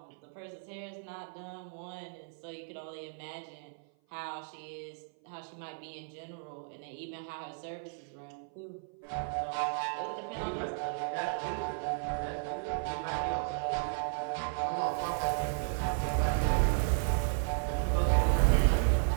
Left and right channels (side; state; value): left; silent; 55 dB below the other